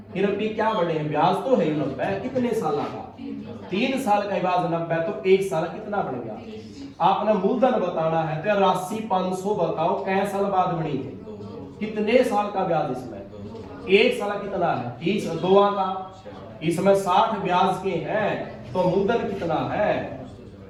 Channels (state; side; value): identical; both; correlation 1.00